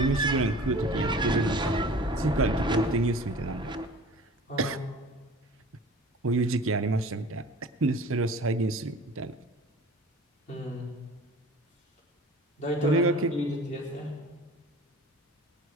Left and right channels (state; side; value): normal; both; correlation 0.43